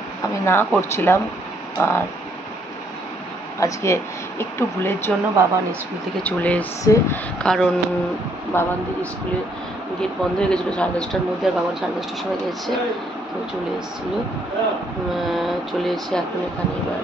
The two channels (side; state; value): both; normal; correlation 0.69